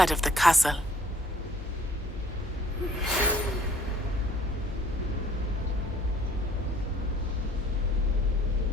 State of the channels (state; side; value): normal; both; correlation 0.57